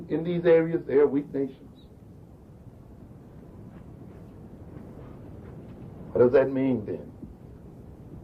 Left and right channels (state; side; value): identical; both; correlation 1.00